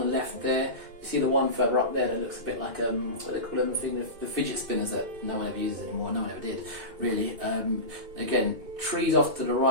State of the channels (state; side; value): late; left; 2.5 ms